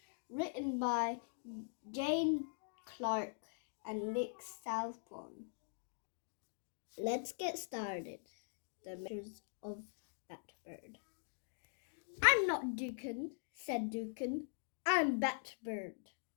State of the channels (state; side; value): silent; right; digital silence